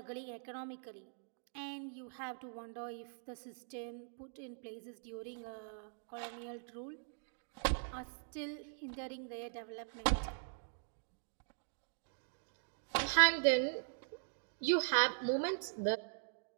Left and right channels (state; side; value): silent; left; digital silence